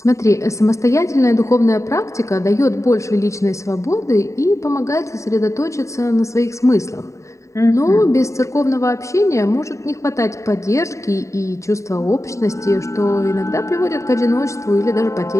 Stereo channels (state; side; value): late; right; 0.15 ms